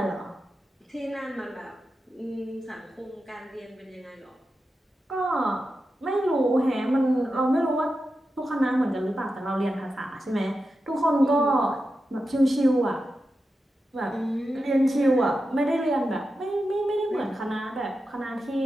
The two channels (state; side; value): normal; both; correlation 0.90